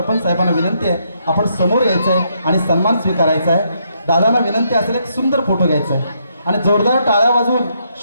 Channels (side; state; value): both; inverted; correlation -0.75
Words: साहेबांना विनंती आहे, आपण समोर यायचं आहे आणि सन्मान स्वीकारायचा आहे। दादांना विनंती असेल एक सुंदर फोटो घ्यायचा आहे आणि जोरदार टाळ्या वाजवून